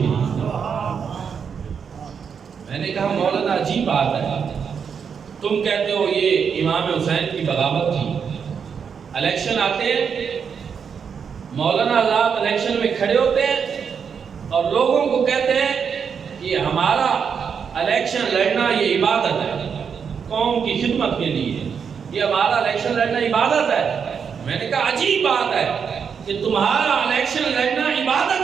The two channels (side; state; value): left; quieter; 6.7 dB